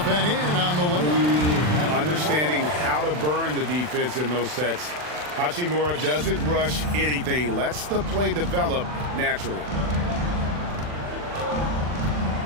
and in on the layup. Understanding how to burn the defense in those sets. Hachimura doesn't rush anything, lets the play develop naturally.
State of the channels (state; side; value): late; left; 40 ms